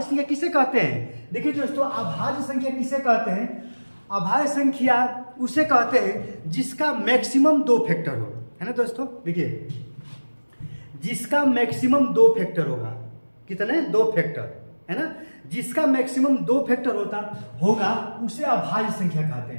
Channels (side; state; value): both; inverted; correlation -1.00